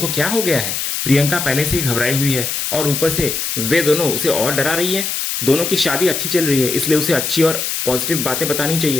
क्या हो गया है। प्रियंका पहले से ही घबराई हुई है और ऊपर से वे दोनों उसे और डरा रही है। दोनों की शादी अच्छी चल रही है, इसलिए उसे अच्छी और पॉजिटिव बातें बतानी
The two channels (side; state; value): left; noise; hiss, 2 dB below the sound